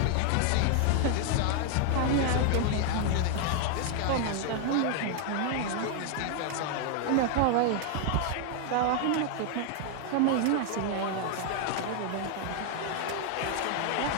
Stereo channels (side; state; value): both; different; correlation 0.00